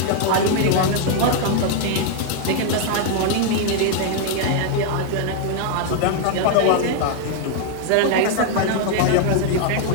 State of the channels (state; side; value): different; both; correlation 0.00